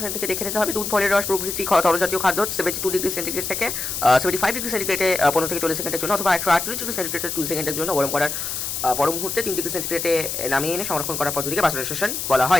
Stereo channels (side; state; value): left; noise; hiss, 4 dB below the sound